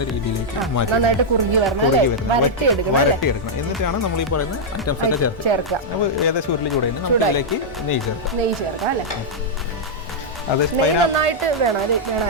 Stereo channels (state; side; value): normal; both; correlation -0.05